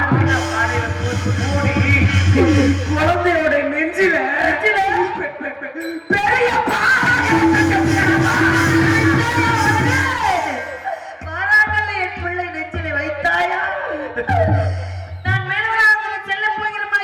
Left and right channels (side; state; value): both; identical; correlation 1.00